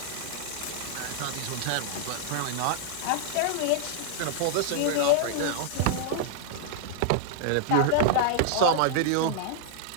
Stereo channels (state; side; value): different; both; correlation -0.01